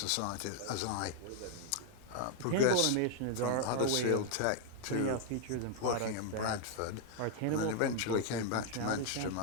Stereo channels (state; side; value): different; both; correlation 0.00